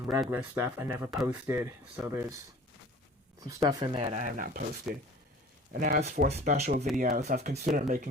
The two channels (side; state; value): both; normal; correlation 0.45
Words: regular stuff I never posted, so there's some stuff in there that I have not posted. And as for special videos, I've considered